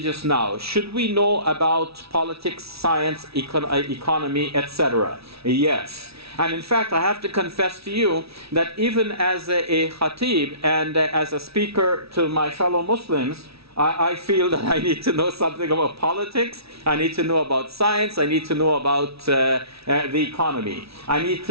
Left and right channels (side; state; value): left; late; 0.77 ms